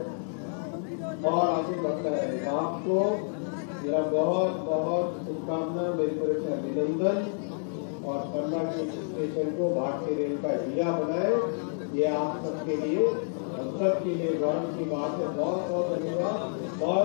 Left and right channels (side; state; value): right; silent; digital silence